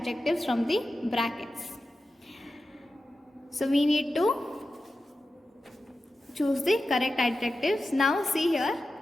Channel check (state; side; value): normal; both; correlation 0.92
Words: from the brackets. So we need to choose the correct adjectives. Now see here